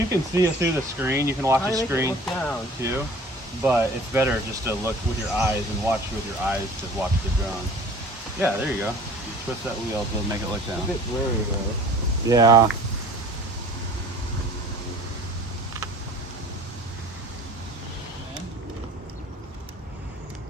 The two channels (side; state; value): both; normal; correlation 0.46